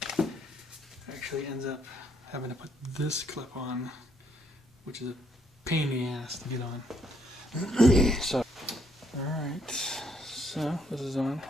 actually ends up having to put this clip on, which is a pain in the ass to get on. So, alright, so this is on.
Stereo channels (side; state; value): both; normal; correlation 0.70